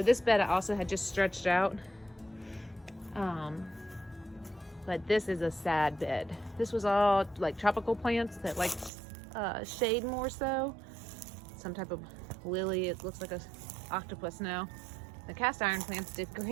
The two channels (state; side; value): drops out; left; at 8.9 s